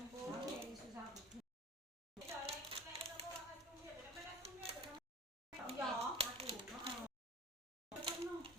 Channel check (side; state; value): both; normal; correlation 0.41